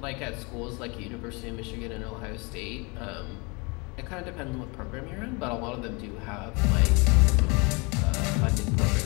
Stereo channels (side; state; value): right; quieter; 29.3 dB